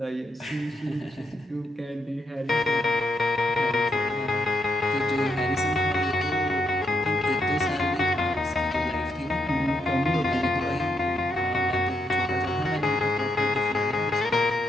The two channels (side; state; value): both; normal; correlation 0.80